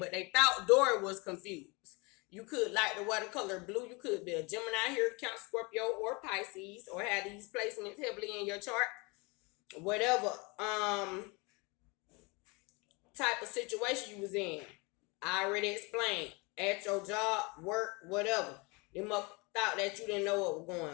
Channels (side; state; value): right; quieter; 28.0 dB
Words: they thought Dora was confused. You could like the watercolor blue. You could be a Gemini here, Count Scorpio, or Pisces, or have these placements heavily in your chart. Whatever type of situation you was in. I already explained. At your job, work, whatever. They must thought that you didn't know what was